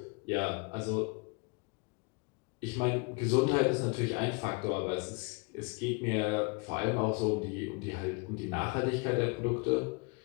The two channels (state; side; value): quieter; right; 31.2 dB